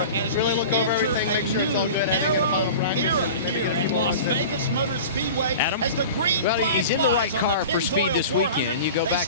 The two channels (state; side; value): inverted; both; correlation -0.36